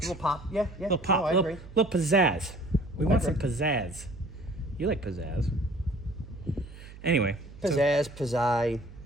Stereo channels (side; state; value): right; noise; hum, 17 dB below the sound